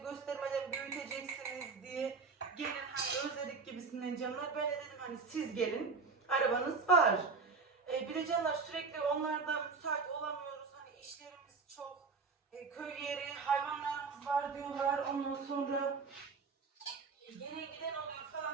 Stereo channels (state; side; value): quieter; left; 4.7 dB